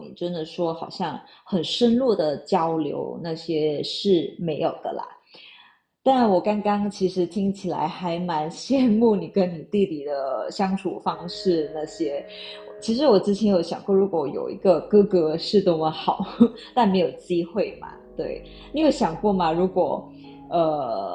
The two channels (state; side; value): identical; both; correlation 1.00